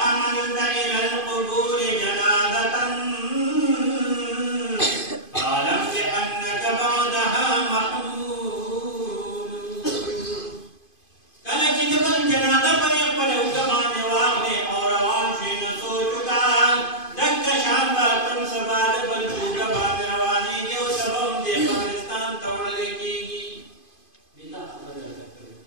حملت إلى القبور جنازة فاعلم بأنك بعدها محمول کله چې د بل جنازه پرې خپل اوږه باندې واخلې او روان شې نو سوچ وکړه دکه شان به تم سبا د بل اوږه باندې روانېږي او سبا هم دې قبرستان ته وړلی کېږي دې دا خبره راته کړې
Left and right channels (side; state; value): right; late; 2.5 ms